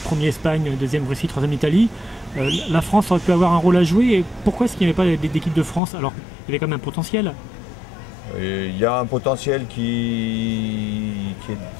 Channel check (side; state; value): right; drops out; at 5.8 s